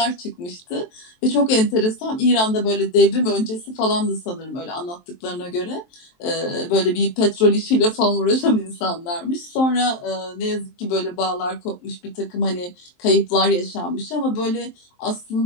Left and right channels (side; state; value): right; late; 23 ms